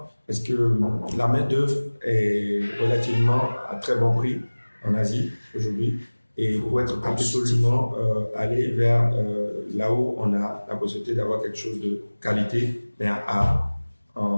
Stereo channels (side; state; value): both; inverted; correlation -1.00